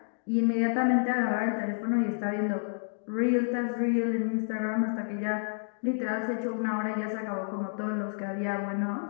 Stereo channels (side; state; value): right; silent; digital silence